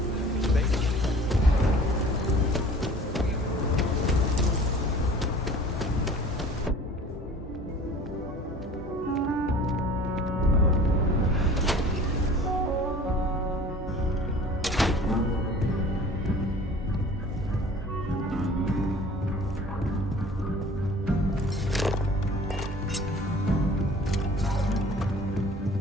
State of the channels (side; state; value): both; normal; correlation 0.46